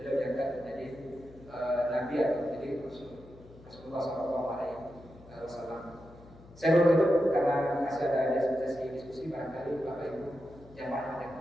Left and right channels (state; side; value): noise; left; hum, 21 dB below the sound